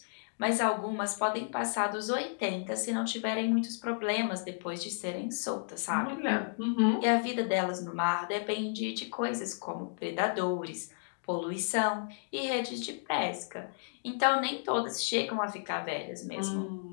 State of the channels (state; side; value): silent; right; digital silence